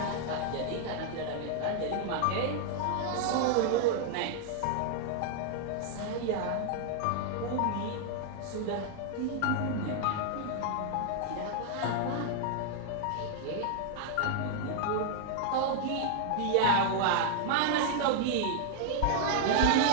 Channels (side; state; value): both; different; correlation 0.00